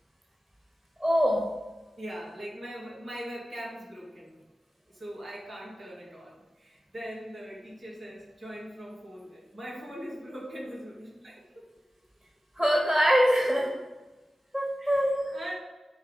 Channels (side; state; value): both; normal; correlation 0.94